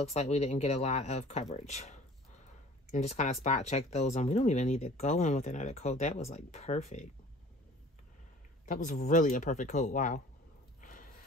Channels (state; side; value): normal; both; correlation 0.47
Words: like we didn't get a lot of coverage. And just kind of spot check those. And we don't even need to go in with another coat. That was like perfect. That was really a perfect coat. Wow.